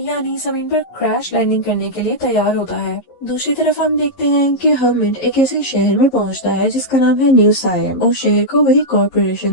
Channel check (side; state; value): right; late; 11 ms